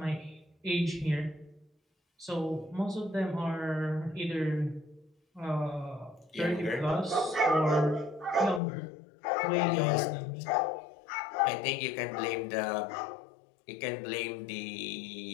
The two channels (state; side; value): drops out; right; at 8.6 s